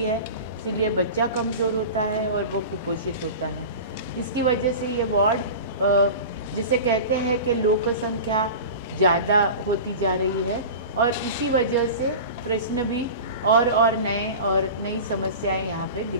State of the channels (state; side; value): inverted; both; correlation -0.32